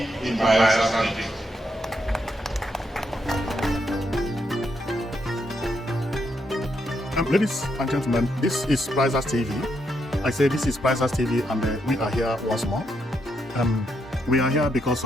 in Bayelsa State. Ladies and gentlemen, this is Prizers TV. I say this is Prizers TV, and we are here once more. We are here because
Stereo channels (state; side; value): normal; both; correlation 0.79